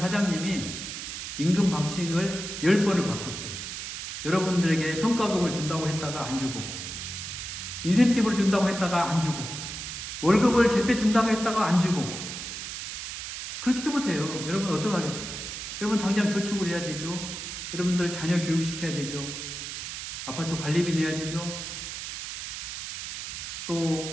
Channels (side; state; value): right; noise; hiss, 7 dB below the sound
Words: 임금 박싱을 10번을 바꿨어요. 여러분들에게 성과급을 준다고 했다가 안 주고, 인센티브를 준다고 했다가 안 주고, 월급을 제때 준다고 했다가 안 주고, 그렇게 해보세요. 여러분 어떡하겠어요? 여러분 당장 저축을 해야 되죠. 여러분들 자녀 교육시켜야 되죠. 아파트 관리비 내야 되죠.